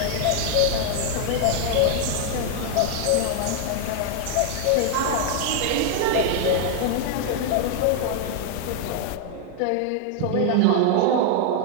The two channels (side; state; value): both; different; correlation 0.00